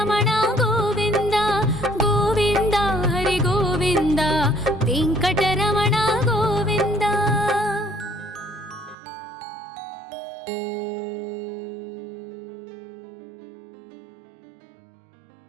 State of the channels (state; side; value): drops out; left; at 9.0 s